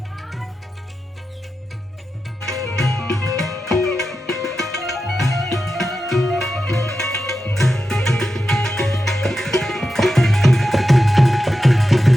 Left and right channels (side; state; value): both; normal; correlation 0.90